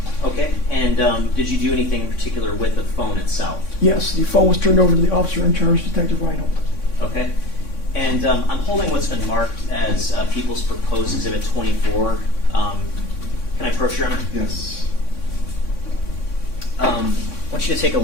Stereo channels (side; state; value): right; late; 3.6 ms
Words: Okay, and did you do anything in particular with the phone itself? Yes, the phone was turned over to the officer in charge, Detective Reinhold. Okay, and I'm holding what's been marked as People's Proposed Exhibit 24. Can I approach, Your Honor? Yes. I want you to take a